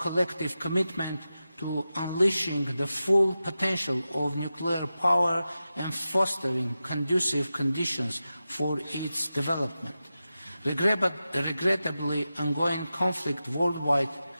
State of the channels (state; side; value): inverted; both; correlation -0.93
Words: commitment to unleashing the full potential of nuclear power and fostering conducive conditions for its development. Regrettably, ongoing conflict worldwide